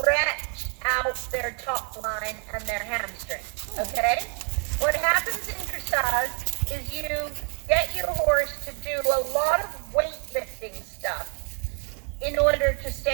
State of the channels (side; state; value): left; quieter; 39.2 dB